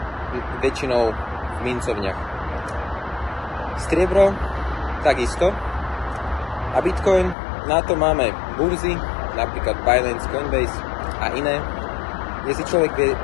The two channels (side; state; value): right; drops out; at 7.4 s